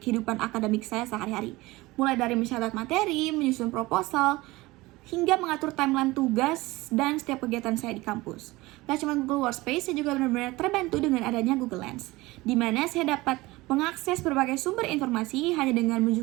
akademik saya sehari-hari. Mulai dari mencatat materi, menyusun proposal, hingga mengatur timeline tugas dan setiap kegiatan saya di kampus. Gak cuma Google Workspace, saya juga benar-benar terbantu dengan adanya Google Lens, di mana saya dapat mengakses berbagai sumber informasi hanya dengan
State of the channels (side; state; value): left; quieter; 20.5 dB